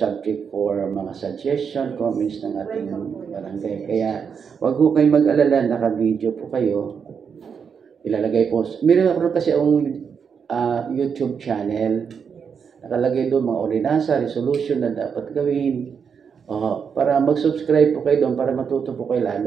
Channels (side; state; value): left; quieter; 6.6 dB